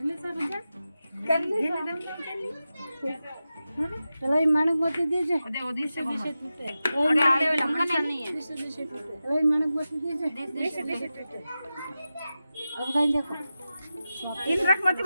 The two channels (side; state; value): both; inverted; correlation -0.93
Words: से बजा करले कलाई मानक मोती दीजे ओदी से टूटे अरे आले लंबा नहीं है दिसे टूटे कलाई मानक मोती दीजे दिसे टूटे अब गाइन देखो इन रख मत